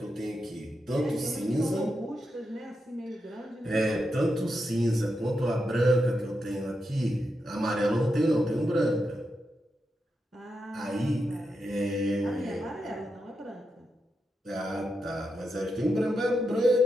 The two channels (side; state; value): both; normal; correlation 0.85